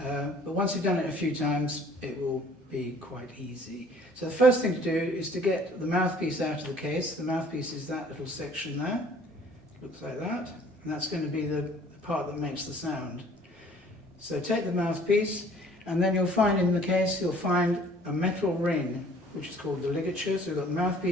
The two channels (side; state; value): both; normal; correlation 0.54